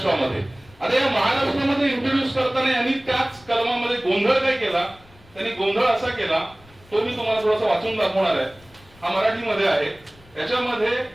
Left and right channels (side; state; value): left; noise; rumble, 26 dB below the sound